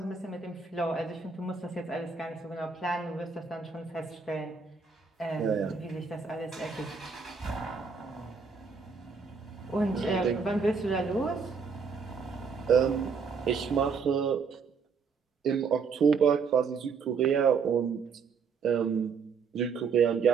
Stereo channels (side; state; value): left; quieter; 5.4 dB